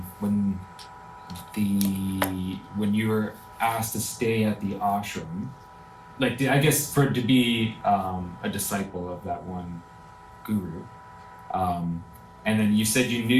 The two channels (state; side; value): identical; both; correlation 1.00